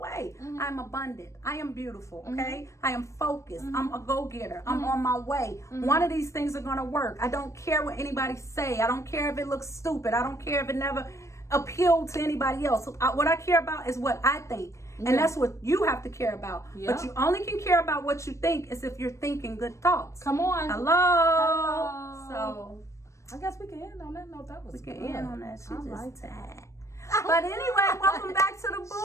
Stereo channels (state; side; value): late; right; 0.15 ms